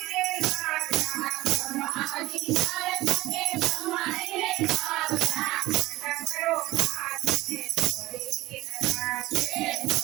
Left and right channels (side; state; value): left; quieter; 18.2 dB